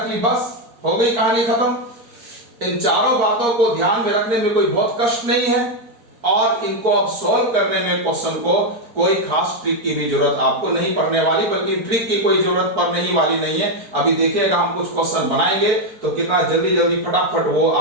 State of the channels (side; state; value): left; late; 4.5 ms